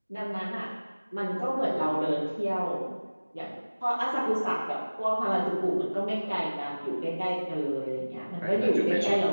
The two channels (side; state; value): both; inverted; correlation -1.00